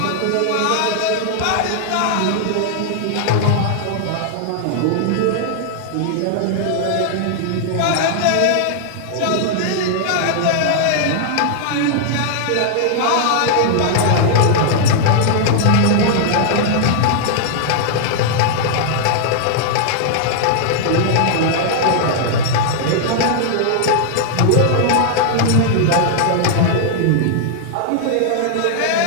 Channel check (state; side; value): different; both; correlation -0.01